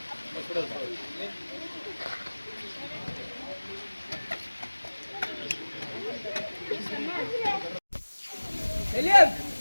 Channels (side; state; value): both; inverted; correlation -1.00